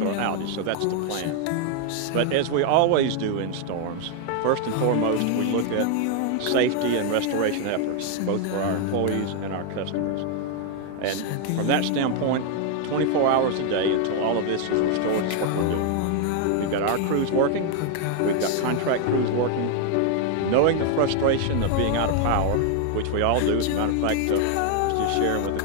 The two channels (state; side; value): different; both; correlation 0.00